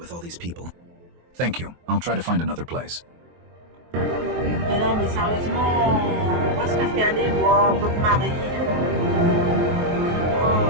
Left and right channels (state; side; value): late; left; 23 ms